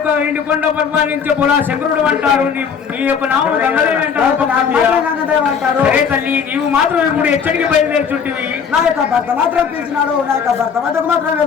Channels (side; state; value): right; quieter; 6.6 dB